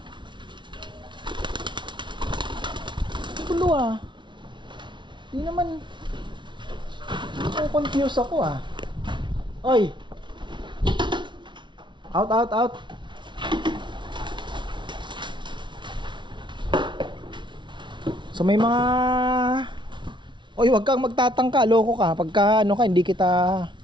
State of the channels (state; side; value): late; left; 0.23 ms